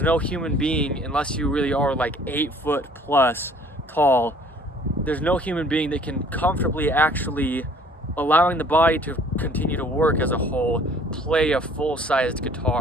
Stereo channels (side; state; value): both; normal; correlation 0.55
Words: no human being, unless you really are like 8 foot plus tall, there's no human being that can comfortably actually, allowing the body to continue to work as a whole, play a full-sized